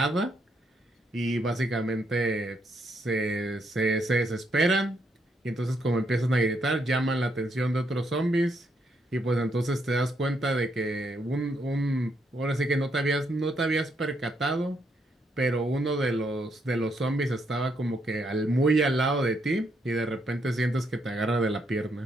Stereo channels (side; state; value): both; normal; correlation 0.76